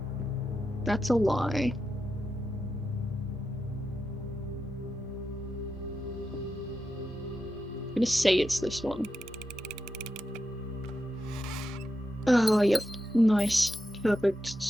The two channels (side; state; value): both; normal; correlation 0.88